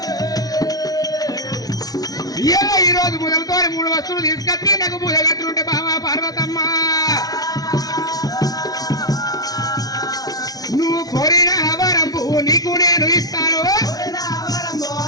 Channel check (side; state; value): right; late; 0.18 ms